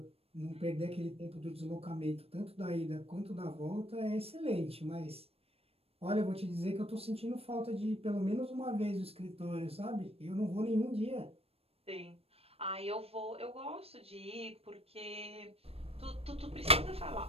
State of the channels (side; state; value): left; late; 0.28 ms